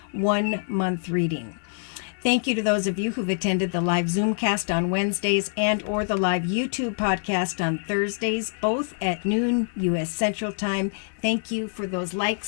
1-month reading. Thank you to those of you who've attended the live Zoomcast on Wednesdays and or the live YouTube podcast on Thursdays, both at noon U.S. Central Time. Thank you for those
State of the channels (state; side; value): silent; right; 59 dB below the other